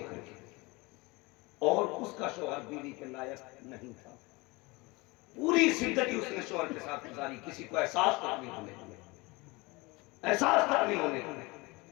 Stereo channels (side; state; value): right; quieter; 24.6 dB